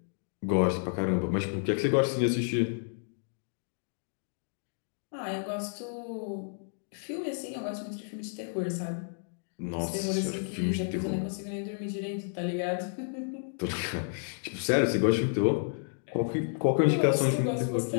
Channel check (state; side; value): silent; right; digital silence